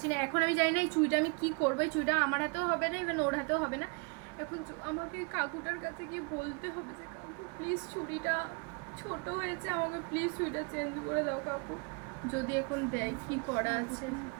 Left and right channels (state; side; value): quieter; left; 34.0 dB